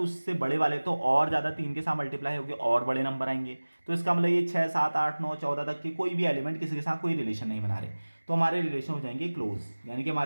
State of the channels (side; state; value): both; inverted; correlation -1.00